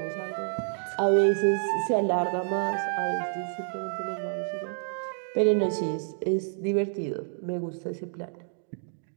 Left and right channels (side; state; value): left; silent; digital silence